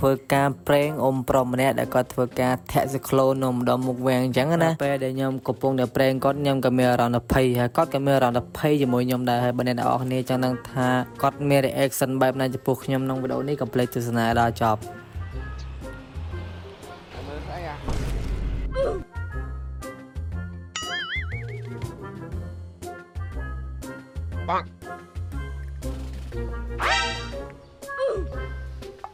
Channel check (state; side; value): identical; both; correlation 1.00